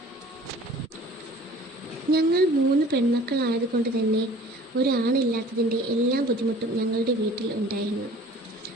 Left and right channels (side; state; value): both; normal; correlation 0.48